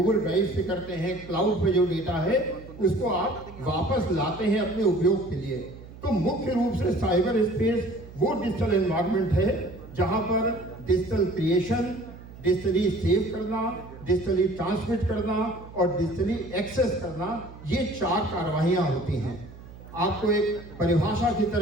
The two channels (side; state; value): right; noise; hum, 17 dB below the sound